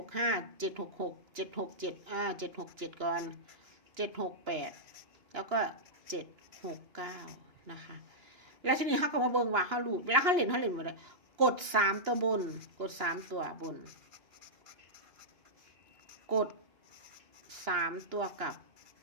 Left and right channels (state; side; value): late; left; 2.9 ms